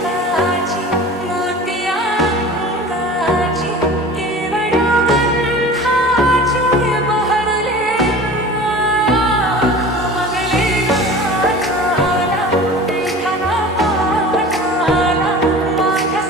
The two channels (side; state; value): both; normal; correlation 0.39